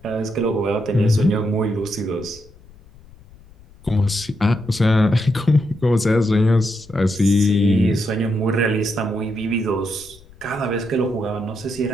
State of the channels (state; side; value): noise; left; rumble, 24 dB below the sound